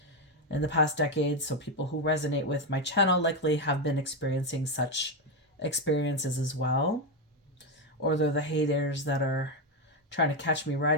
in the past decades. So people who resonate with my channel likely have been experiencing such experiences as well. Or they're the haters that are trying to catch me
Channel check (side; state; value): both; normal; correlation 0.08